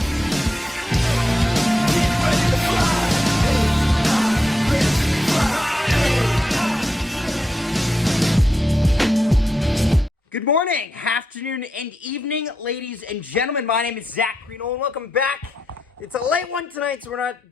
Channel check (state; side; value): normal; both; correlation 0.85